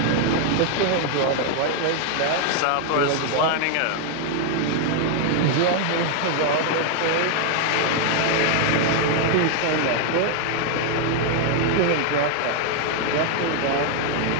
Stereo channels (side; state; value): both; different; correlation 0.00